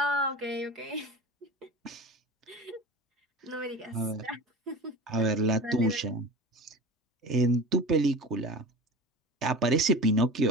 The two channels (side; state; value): both; normal; correlation 0.33